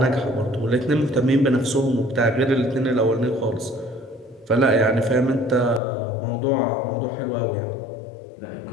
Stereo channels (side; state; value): right; drops out; at 5.8 s